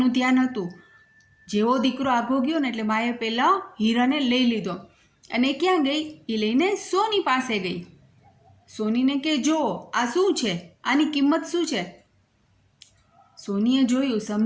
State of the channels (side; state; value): both; identical; correlation 1.00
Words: ધ્યાન હતું. જેવો દીકરો આગો ગયો ને એટલે માએ પહેલાં હીરાને લઈ લીધો અને ક્યાં ગઈ? એ લઈને સોની પાસે ગઈ. સોનીને કે જો આ શું છે, આની કિંમત શું છે? સોનીએ જોયું,